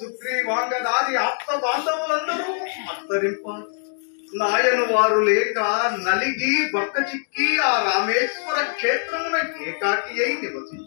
ఆప్త బాంధవులందరూ అంతరింప నాయను వారు లేక నలిగి బక్క చిక్కి ఆ రామేశ్వర క్షేత్రమున ఏకాకి అయి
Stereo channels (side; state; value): right; silent; digital silence